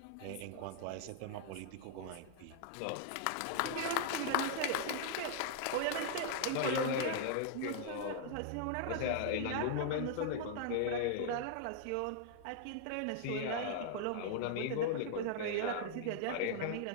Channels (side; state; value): both; different; correlation 0.00